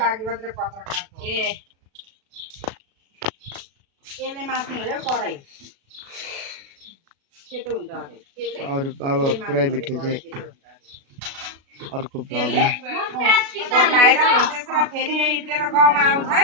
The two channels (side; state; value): left; late; 36 ms